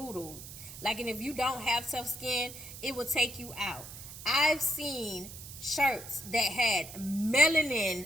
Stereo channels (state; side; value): noise; right; hiss, 13 dB below the sound